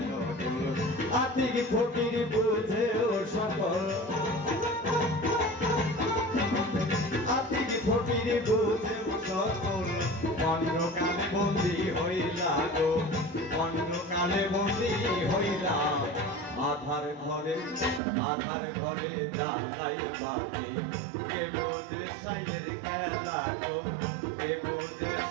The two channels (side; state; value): left; drops out; at 18.0 s